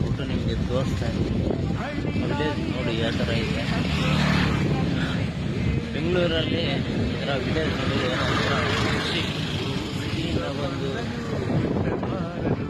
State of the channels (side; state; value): both; identical; correlation 1.00